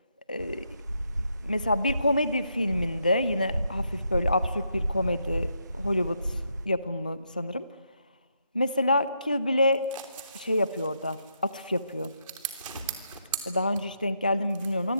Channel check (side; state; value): both; inverted; correlation -0.79